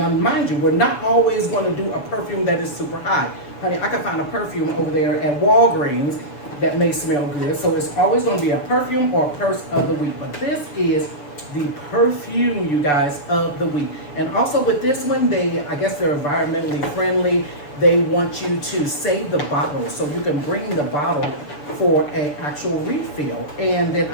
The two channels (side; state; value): right; late; 7.0 ms